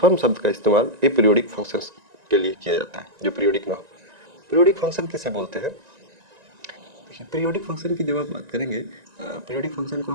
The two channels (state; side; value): late; left; 1.9 ms